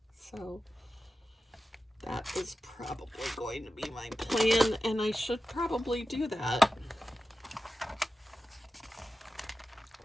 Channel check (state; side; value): normal; both; correlation 0.92